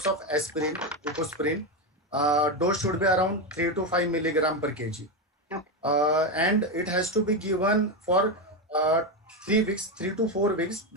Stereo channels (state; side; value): normal; both; correlation 0.11